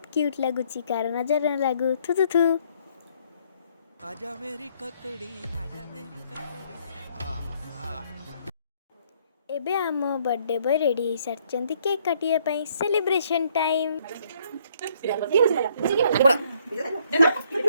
क्यूट लगुची कार नजर न लागू थु थु थु। आजा मेरी ककड़ी आजा मेरी ककड़ी। एबे आम बर्थडे बॉय रेडी हो सारी केक काटिया पाई सेलिब्रेशन टाइम।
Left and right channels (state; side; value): inverted; both; correlation -0.66